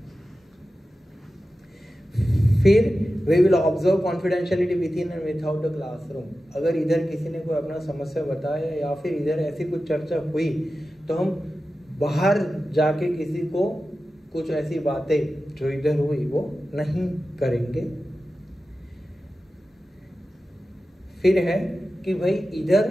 फिर we will observe confidentiality within and without the classroom. अगर इधर किसी ने कोई अपना समस्या बताया या फिर इधर ऐसी कुछ चर्चा हुई तो हम बाहर जाके किसी को कुछ ऐसी बातें जो इधर हुई वो नहीं करेंगे। फिर है कि भाई इधर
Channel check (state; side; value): normal; both; correlation 0.93